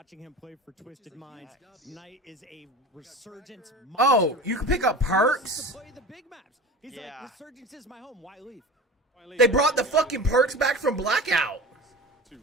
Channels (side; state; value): both; normal; correlation 0.33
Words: him play for Twisted Minds. Knight is a resurgence monster. Oh, you can pick up perks? To play the big maps. He's like, resurgence is my home. Why leave? They brought the fucking perks back from Blackout. To